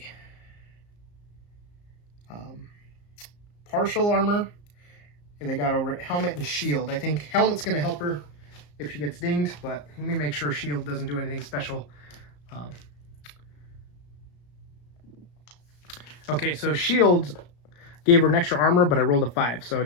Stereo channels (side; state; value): right; late; 34 ms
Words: partial armor. They got over it. Helmet and shield. I think helmet's going to help her if she gets dinged, but let me make sure shield doesn't do anything special. Okay, so shield gave her an extra armor, but I rolled a 5, so